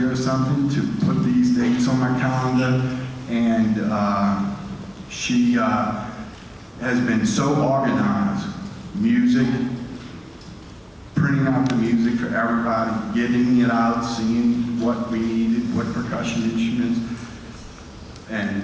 or something, to put these dates on my calendar, and she has been so organized. Music, printing out the music for everybody, getting it out, seeing what we needed, what percussion instruments,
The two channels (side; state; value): both; identical; correlation 1.00